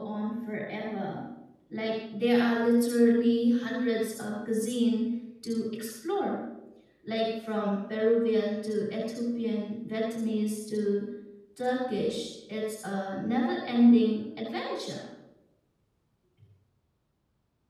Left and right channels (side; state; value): both; identical; correlation 1.00